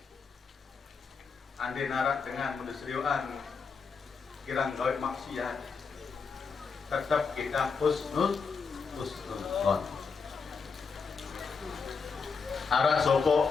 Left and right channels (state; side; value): quieter; right; 5.2 dB